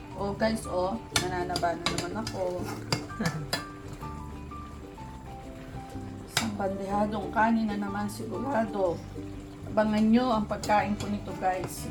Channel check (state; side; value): identical; both; correlation 1.00